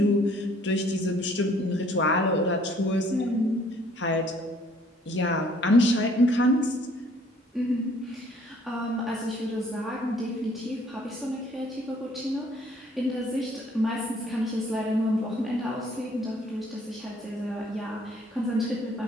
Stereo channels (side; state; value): both; normal; correlation 0.60